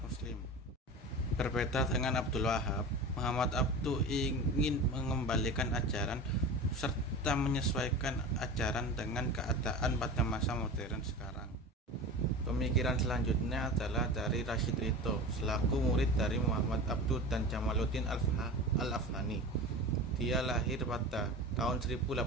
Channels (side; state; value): both; normal; correlation 0.31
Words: muslim. Berbeda dengan Abdul Wahab, Muhammad Abduh ingin mengembalikan ajaran serta menyesuaikan ajaran dengan keadaan pada masa modern sekarang. Pemikiran selanjutnya adalah dari Rashid Ridho selaku murid dari Muhammad Abduh dan Jamaluddin Al-Afghani. Dia lahir pada tahun